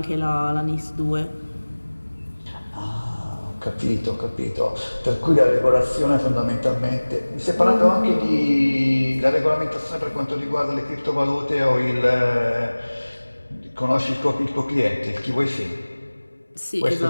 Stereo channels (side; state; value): both; inverted; correlation -1.00